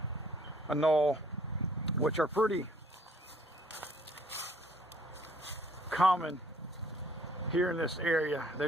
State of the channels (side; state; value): both; normal; correlation 0.61